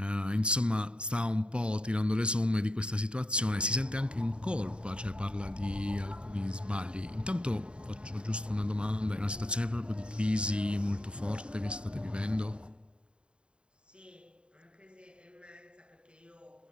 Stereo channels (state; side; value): late; left; 0.054 ms